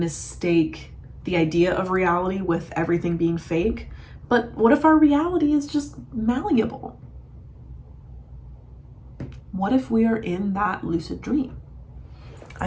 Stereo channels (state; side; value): identical; both; correlation 1.00